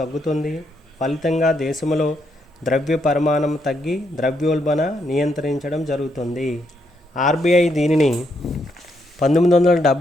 ఫలితంగా దేశంలో ద్రవ్య పరిమాణం తగ్గి ద్రవ్యోల్బణ నియంత్రించడం జరుగుతుంది. ఆర్బీఐ దీనిని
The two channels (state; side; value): normal; both; correlation 0.77